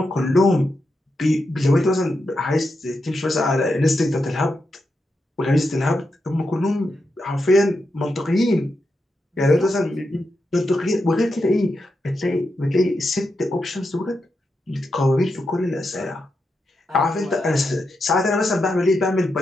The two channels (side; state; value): both; normal; correlation 0.86